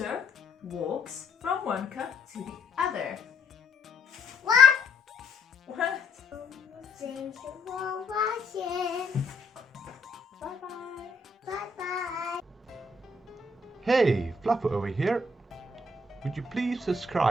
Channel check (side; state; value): right; quieter; 3.1 dB